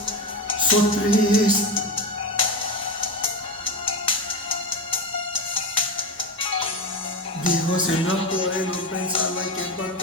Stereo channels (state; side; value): normal; both; correlation 0.18